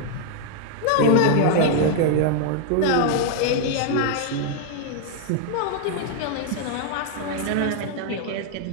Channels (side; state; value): both; different; correlation 0.00